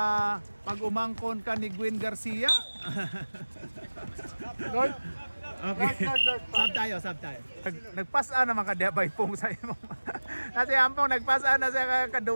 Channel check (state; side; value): inverted; both; correlation -1.00